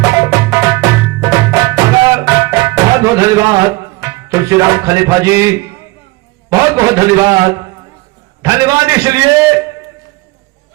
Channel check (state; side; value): quieter; left; 22.4 dB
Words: बहुत बहुत धन्यवाद तुलसीराम खलीफा जी, बहुत बहुत धन्यवाद। धन्यवाद इसलिए,